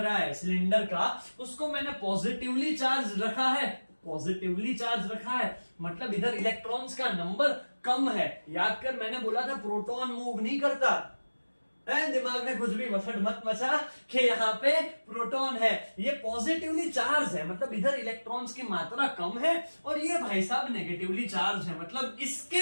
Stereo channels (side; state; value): both; inverted; correlation -1.00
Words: है सिलेंडर का, उसको मैंने पॉजिटिवली चार्ज रखा है। पॉजिटिवली चार्ज रखा है मतलब इधर इलेक्ट्रॉन्स का नंबर कम है। याद कर, मैंने बोला था प्रोटॉन मूव नहीं करता। दिमाग में कुछ भी वसट मत मचा कि यहाँ पे प्रोटॉन है। ये पॉजिटिवली चार्ज है मतलब इधर इलेक्ट्रॉन्स की मात्रा कम है और ये भाई साहब नेगेटिवली चार्ज है मतलब